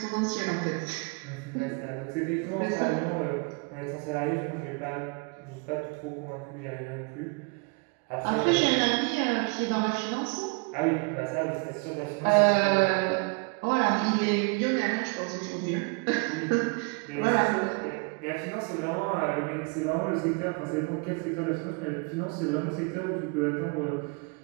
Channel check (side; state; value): left; quieter; 33.2 dB